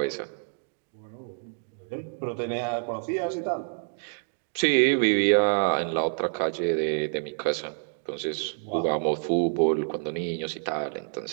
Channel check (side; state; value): left; silent; digital silence